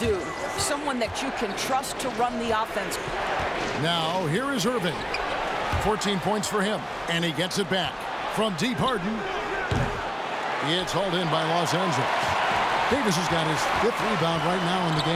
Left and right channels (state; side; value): identical; both; correlation 1.00